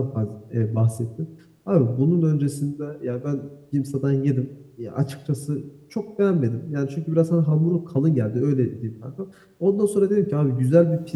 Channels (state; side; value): identical; both; correlation 1.00